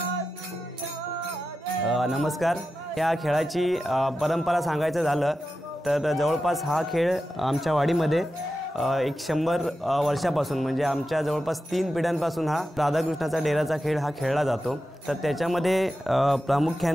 नमस्कार। या खेळाची परंपरा सांगायचं झालं तर जवळपास हा खेळ आमच्या वाडीमध्ये 100 वर्षापासून म्हणजे आमच्या जवळपास 3 पिढ्यांपासून हा राधाकृष्णाचा डेराचा खेळ हा खेळला जातो। तर त्याच्यामध्ये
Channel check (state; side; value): normal; both; correlation 0.91